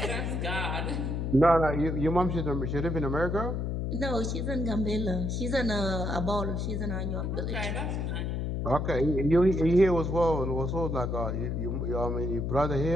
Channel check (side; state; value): left; noise; hum, 1 dB below the sound